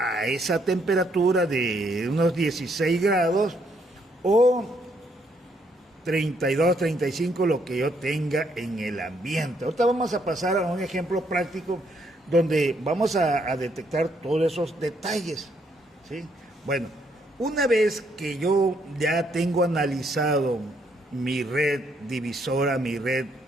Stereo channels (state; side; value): normal; both; correlation 0.72